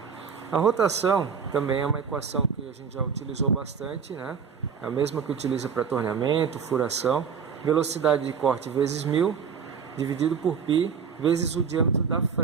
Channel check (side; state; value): left; quieter; 6.5 dB